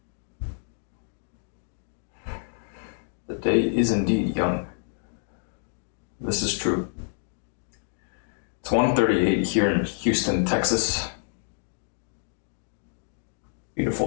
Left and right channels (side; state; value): right; silent; digital silence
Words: The day is indeed young. This is true. It's 1:38 here in Houston, Texas.